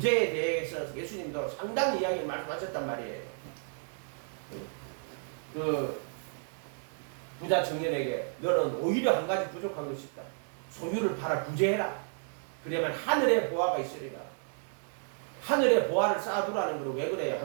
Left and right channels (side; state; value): left; silent; 56 dB below the other